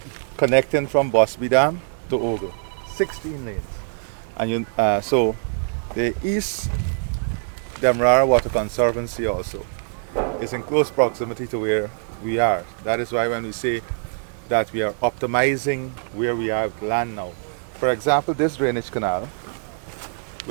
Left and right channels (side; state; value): left; silent; digital silence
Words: connecting from Bosby Dam to Ogle. 16 lanes. And you, so the East Demerara Water Conservancy also is in close proximity to where we are. That is why when we say that we are optimizing where we are with land now. For example, this drainage canal